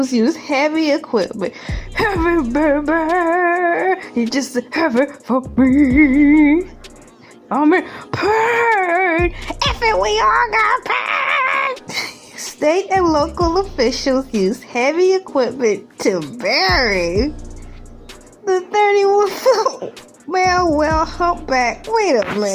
use heavy equipment. Heavy, baby. You just heavy for me. I'm in pain. If it, we all got pain. State and local officials use heavy equipment to bury the 31-foot male whale humpback. Wait a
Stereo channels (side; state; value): both; identical; correlation 1.00